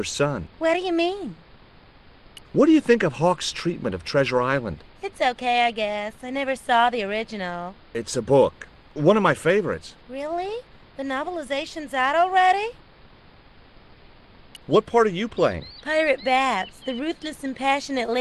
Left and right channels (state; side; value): identical; both; correlation 1.00